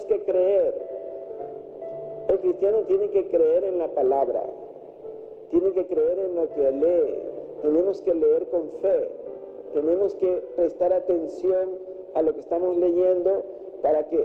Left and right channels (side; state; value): both; identical; correlation 1.00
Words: que creer. El cristiano tiene que creer en la palabra, tiene que creer en lo que lee, tenemos que leer con fe, tenemos que prestar atención a lo que estamos leyendo para